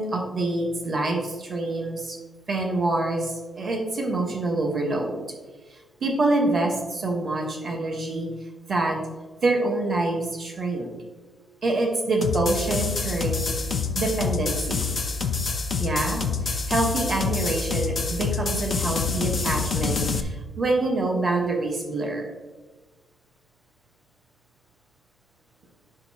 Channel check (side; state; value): both; normal; correlation 0.71